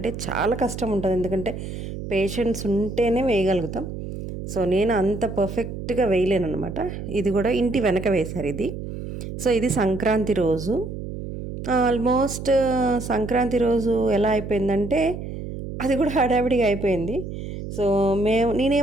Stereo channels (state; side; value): noise; right; hum, 8 dB below the sound